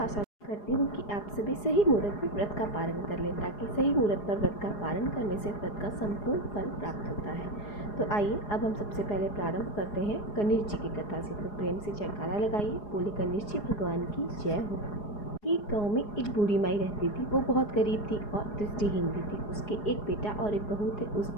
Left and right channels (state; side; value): late; right; 4.8 ms